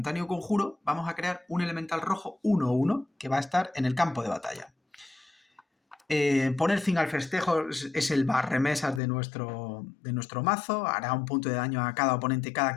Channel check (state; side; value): drops out; right; at 9.0 s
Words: conjuro, vamos a crear un elemental rojo 1/1 que va a estar en el campo de batalla. Poner fin al festejo es el barremesas de nuestro mazo. Hará un punto de daño a cada oponente, cada